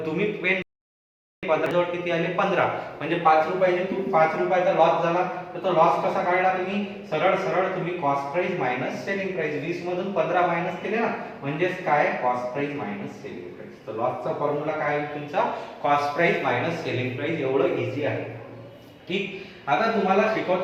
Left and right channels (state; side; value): identical; both; correlation 1.00